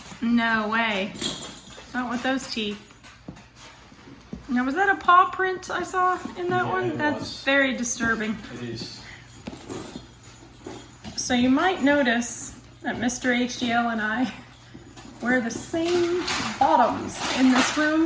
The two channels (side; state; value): both; identical; correlation 1.00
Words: No way. Not with those teeth. Now, was that a paw print I saw in that Yeah, one? it That's was. very disturbing. It is. So you might notice that Mr. HDL and I wear the same bottoms in this